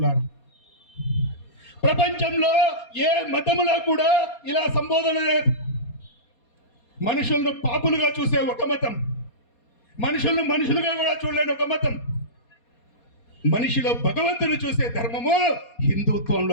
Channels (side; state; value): right; late; 4.2 ms